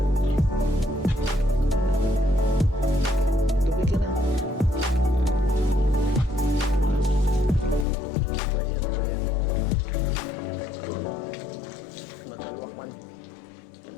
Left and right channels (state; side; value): drops out; right; at 7.9 s